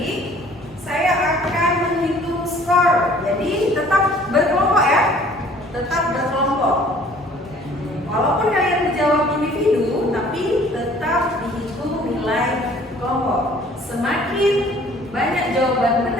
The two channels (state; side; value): normal; both; correlation 0.54